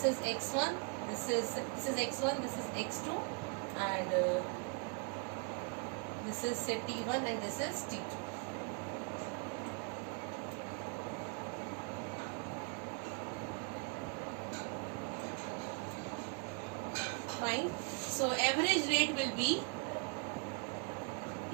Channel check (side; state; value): left; quieter; 37.2 dB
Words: is x1. This is x1. This is x2, and this is say t1 and this is t2. Fine. So average rate will be